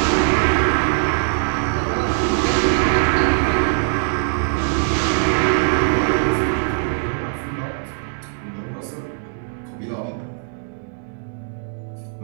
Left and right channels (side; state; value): left; silent; digital silence